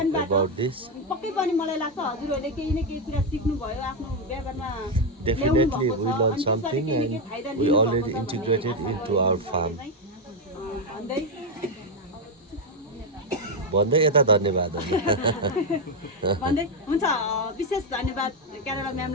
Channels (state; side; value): normal; both; correlation 0.05